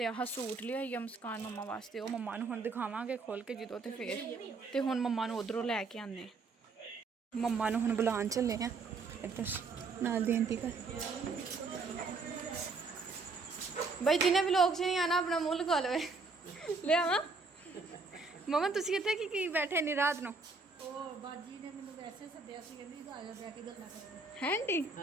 आह सूट लिआई आ मुस्कान मम्मा वास्ते, वो मम्मा नूं हुण दिखावांगे खोल के जदों, ते फिर ते हुण मम्मा नूं उधरों लैके आने। मम्मा नूं हुण बुलान चले आ इधर नाल दी आंटी घर। भाई जिन्हें व्लॉग च नहीं आना अपना मुंह लगा लवे। ले आवा मम्मा तुसीं कित्थे की बैठे इन्नी रात नूं? है आंटी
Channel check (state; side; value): quieter; left; 4.1 dB